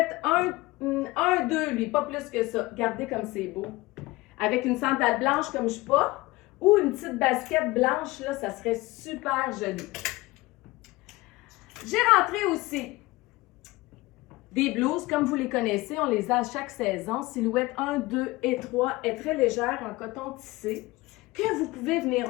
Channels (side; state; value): right; quieter; 20.6 dB